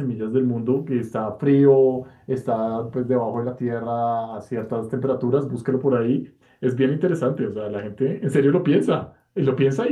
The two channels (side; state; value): both; identical; correlation 1.00